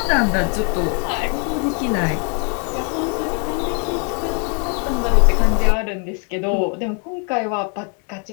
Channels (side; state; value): right; quieter; 39.1 dB